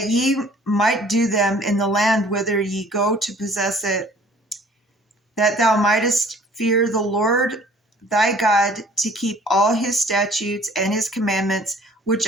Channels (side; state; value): both; normal; correlation 0.53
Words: ye might do them in the land whither ye go to possess it, that thou mightest fear the Lord thy God, to keep all his statutes and his commandments, which